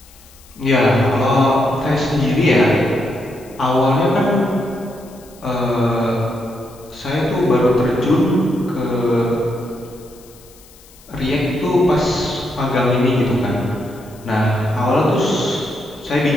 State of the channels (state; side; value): noise; left; hiss, 25 dB below the sound